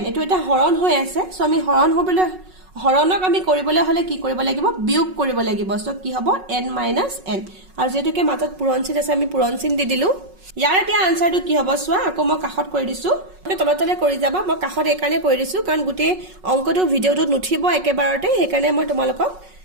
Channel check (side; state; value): left; late; 5.4 ms